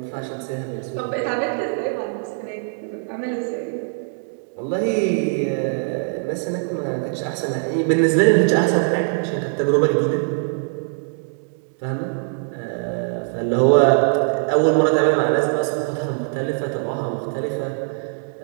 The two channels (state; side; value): silent; left; digital silence